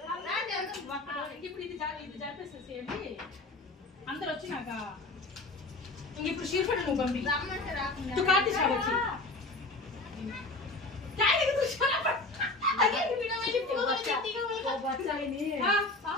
ఇప్పుడు ఇది జరిపేసేసేయండి అందరు వచ్చినాక. ఇప్పుడు షీర్ఫడ్ నువ్వు పంపి తు కార్తీక్ సాబ్ వచ్చి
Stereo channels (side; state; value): right; quieter; 3.0 dB